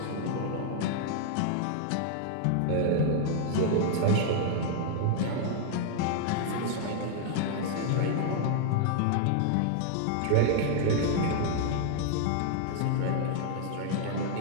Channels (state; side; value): different; both; correlation 0.00